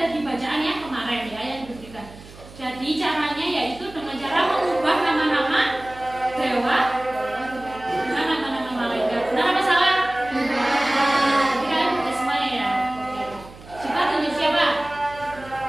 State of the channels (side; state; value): right; noise; hum, 19 dB below the sound